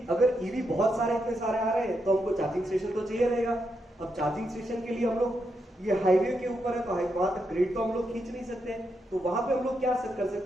अगर ईवी बहुत सारे इतने सारे आ रहे हैं तो हमको चार्जिंग स्टेशन तो चाहिए रहेगा। अब चार्जिंग स्टेशन के लिए हम लोग, ये हाईवे के ऊपर है तो वहां तक ग्रिड तो हम लोग खींच नहीं सकते, तो वहां पे हम लोग क्या कर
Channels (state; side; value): normal; both; correlation 0.82